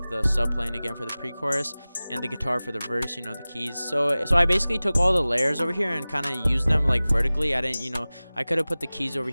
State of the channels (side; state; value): both; inverted; correlation -0.98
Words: the sub playing again for the pre-chorus, and the guitar for the verse, you know, the keys. So I basically took all the layers over here and kind of used them like vertically. I didn't, you know, I could have put the keys over